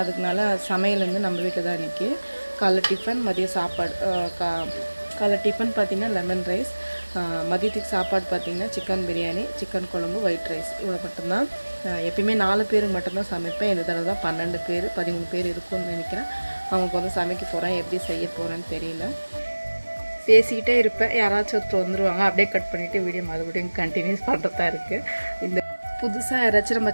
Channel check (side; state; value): both; inverted; correlation -1.00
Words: அதுக்குனால சமையல் வந்து நம்ம வீட்டில் தான் இன்றைக்கி. காலைல டிஃபன், மதிய சாப்பாடு. காலைல டிஃபன் பார்த்திங்கன்னா லெமன் ரைஸ், மதியத்துக்கு சாப்பாடு பார்த்திங்கன்னா சிக்கன் பிரியாணி, சிக்கன் குழம்பு, ஒயிட் ரைஸ், இவ்வளோ மட்டும்தான். எப்பயுமே 4 பேருக்கு மட்டும்தான் சமைப்பேன். இந்த தடவை தான் 12 பேர் 13 பேர் இருக்கும்னு நினைக்கிறேன். அவங்களுக்கு வந்து சமைக்க போகிறேன். எப்படி செய்ய போகிறேன்னு தெரியல. பேசிக்கிட்டே இருப்பேன், யாராச்சும் ஒருத்தர் வந்துடுவாங்க. அப்படியே கட் பண்ணிவிட்டு வீடியோ மறுபடியும் கண்டினியூஸ் பண்ணுறதா இருக்குது. இந்த புதுசாக யாராச்சும் நம்ம